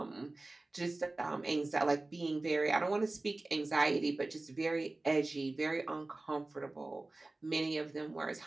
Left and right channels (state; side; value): quieter; left; 3.0 dB